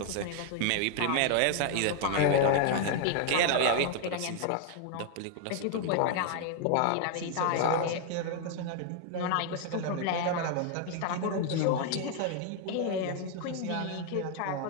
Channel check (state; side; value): different; both; correlation 0.00